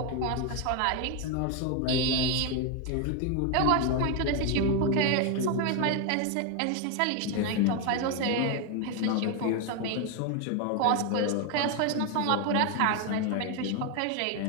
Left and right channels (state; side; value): different; both; correlation 0.01